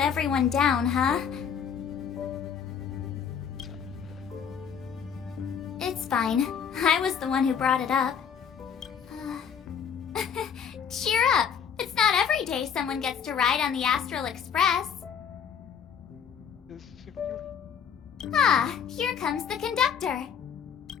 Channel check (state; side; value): quieter; right; 7.5 dB